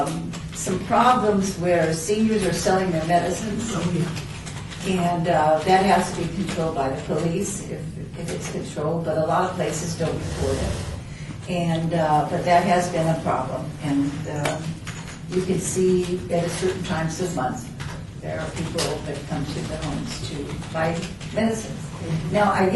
some problems where seniors are selling their medicines. And that has to be controlled by the police if it's controlled, but a lot of places don't report it. And, but that has been a problem. And you can see at certain times of month, there are people that come to the homes to buy medicines. Now, I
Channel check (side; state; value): both; identical; correlation 1.00